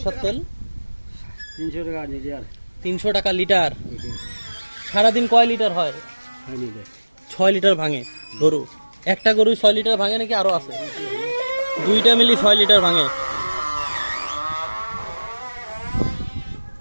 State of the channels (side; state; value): both; inverted; correlation -1.00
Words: তেল? 300 টাকা লিটার। 300 টাকা লিটার। সারাদিন কয় লিটার হয়? 6 লিটার ভাঙে গরু। একটা গরু 6 লিটার ভাঙে নাকি আরো আছে? দুইটা মিলি 6 লিটার ভাঙে।